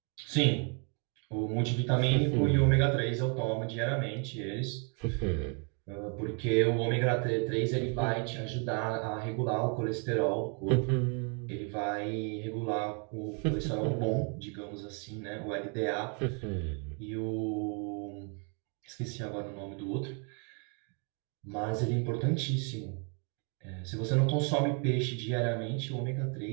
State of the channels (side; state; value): left; quieter; 37.3 dB